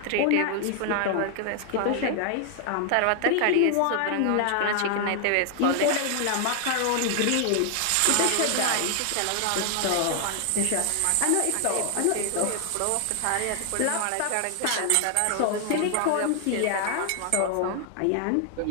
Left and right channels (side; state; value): both; different; correlation 0.00